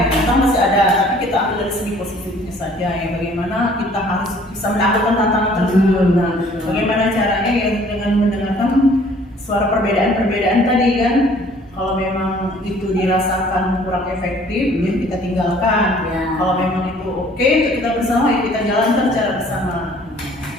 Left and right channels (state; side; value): normal; both; correlation 0.56